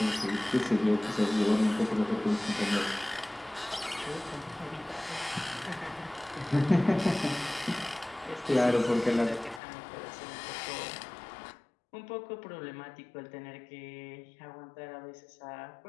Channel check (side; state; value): right; drops out; at 9.6 s